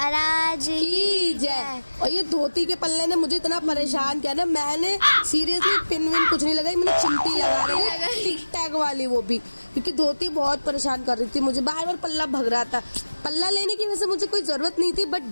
की जय। और ये धोती के पल्ले ने मुझे इतना परेशान किया ना, मैंने सीरियसली पिन विन कुछ नहीं लगाई, मैंने चिमटी लगा रही है, टिक टैग वाली, वो भी क्योंकि धोती बहुत परेशान कर रही थी मुझे, बार बार पल्ला भग रहा था। पल्ला लेने की वैसे मुझे कोई जरूरत नहीं थी, बट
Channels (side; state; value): both; inverted; correlation -1.00